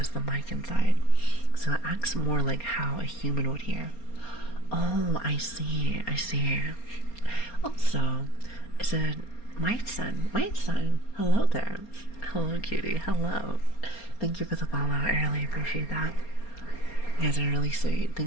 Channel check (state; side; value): late; right; 4.3 ms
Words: the mic inside. So it acts more like how a human would hear. Oh, I see. I see. Also, it's a White Sun. Hello there. Hello, cutie. Hello. Thank you for the follow. I really appreciate that. You guys are really sweet.